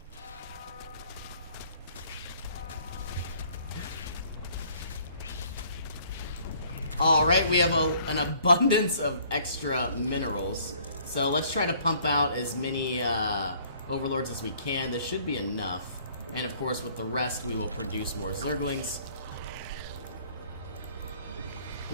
Alright, we have an abundance of extra minerals. So let's try to pump out as many overlords as we can. This should be enough. And of course, with the rest, we will produce more zerglings.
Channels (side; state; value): both; inverted; correlation -0.58